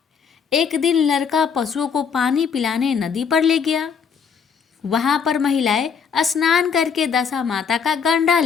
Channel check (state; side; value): quieter; right; 6.5 dB